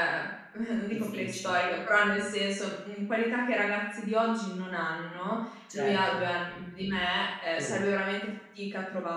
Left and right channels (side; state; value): both; identical; correlation 1.00